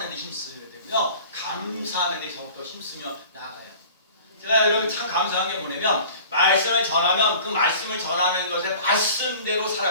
데 힘써야 되고요 감사하는 데 더욱더 힘쓰며 나가요. 제가 여러분 참 감사한 게 뭐냐면 말씀을 전하면 그 말씀을 전하는 것에 말씀대로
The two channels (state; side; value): inverted; both; correlation -0.44